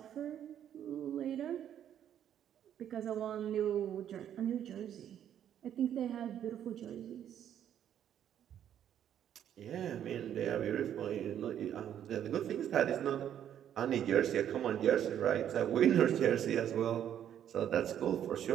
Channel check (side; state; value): left; quieter; 10.0 dB